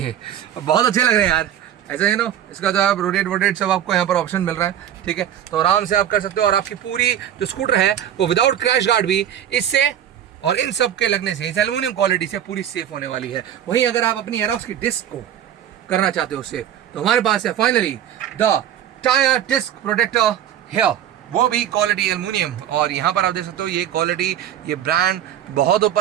बहुत अच्छे लग रहे हैं यार, ऐसा है नो। इसका जो आप रोटेट सब आपको यहाँ पर ऑप्शन मिल रहा है, ठीक है, तो आराम से आप कर सकते हो। और आपकी पूरी जो स्कूटर है वो विदाउट क्रैश गार्ड भी इससे और इन सब के लगने से, इस एल्युमिनियम क्वालिटी से पूरी सेफ होने वाली है। वहीं अगर आप अपनी एरोक्स की डिस्क को करना चाहते हो सेफ, तो हमारे पास है finally the tyre disc protector here, वो भी क्वालिटी एल्युमिनियम। और यहाँ पर आप देख सकते हो ये क्वालिटी, ये ब्रांड बहुत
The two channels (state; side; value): quieter; left; 10.5 dB